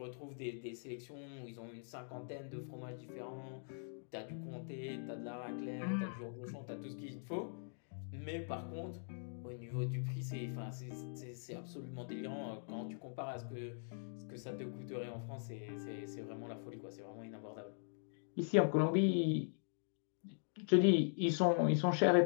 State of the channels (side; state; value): right; silent; digital silence